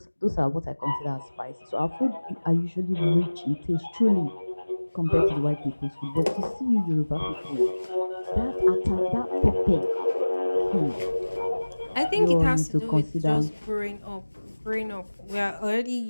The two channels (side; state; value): both; inverted; correlation -1.00